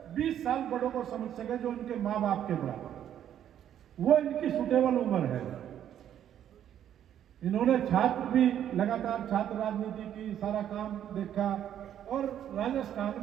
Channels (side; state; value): left; quieter; 10.3 dB